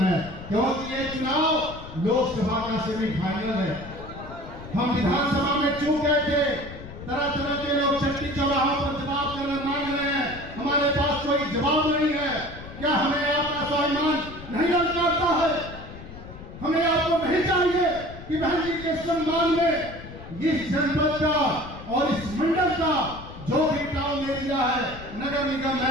है। क्योंकि ये चुनाव लोकसभा का सेमीफाइनल है। हम विधानसभा में चूक गए थे। तरह तरह के लोग चट्टी चौराहों पर जवाब करना मांग रहे हैं, हमारे पास कोई जवाब नहीं है। क्या हमें आपका स्वाभिमान नहीं ललकारता है? हमें आपको नहीं चाहिए कि बहन जी के सम्मान में इस जनपद का और इस मंडल का जो भी टाउन एरिया है, नगर निगम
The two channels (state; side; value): noise; left; rumble, 14 dB below the sound